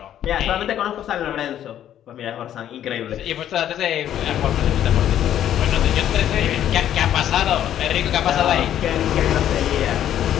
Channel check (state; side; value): quieter; right; 10.9 dB